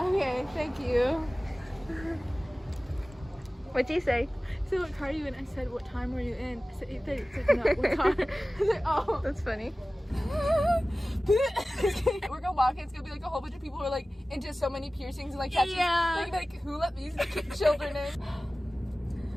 Thank you. What'd you say? So what car are you in? I said, what time were you in? I said 8:30. It's like, no, what time? I was like, oh. That's funny. We're gonna walk in. It's gonna be like a whole bunch of people who are like into so many piercings and like catching, like who let these children in?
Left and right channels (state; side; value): normal; both; correlation 0.97